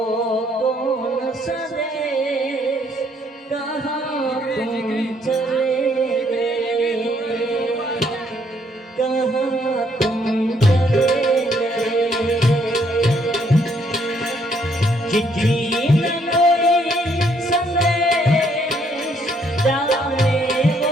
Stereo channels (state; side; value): normal; both; correlation 0.69